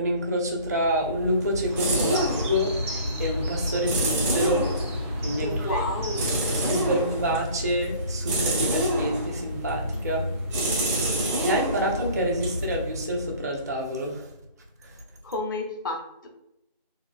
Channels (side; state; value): both; inverted; correlation -0.46